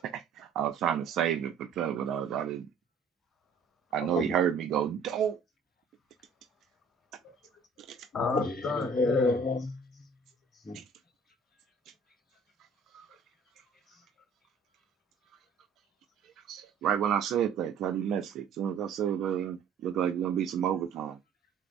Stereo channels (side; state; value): left; quieter; 4.5 dB